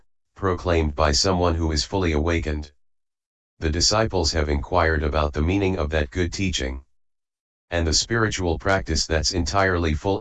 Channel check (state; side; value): identical; both; correlation 1.00